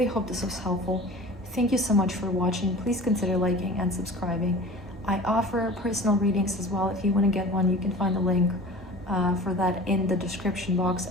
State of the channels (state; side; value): normal; both; correlation 0.40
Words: hope this was helpful. Thank you so much for watching. Please consider liking and subscribing. I offer personal readings as well. If you want to get one, you can find the link for that in the description box.